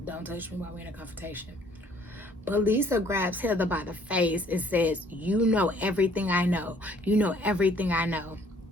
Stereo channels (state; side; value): normal; both; correlation 0.59